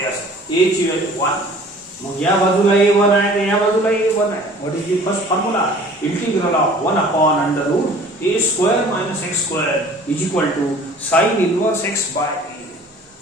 ए ची व्हॅल्यू 1, मग या बाजूला a1 आहे आणि या बाजूला a1 आहे. What is the first formula? Integral of 1 upon under root a square minus x square is equal to sine inverse x by a.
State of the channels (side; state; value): both; normal; correlation 0.49